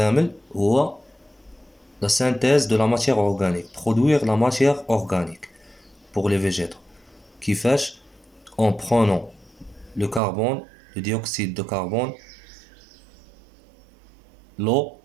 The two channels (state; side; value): drops out; left; at 10.2 s